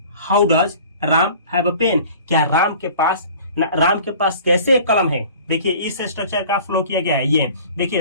Ram have a pen, क्या राम के पास कैसे एक कलम है। देखिए इस स्ट्रक्चर का फ्लो किया गया है। ये देखिए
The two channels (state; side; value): inverted; both; correlation -0.46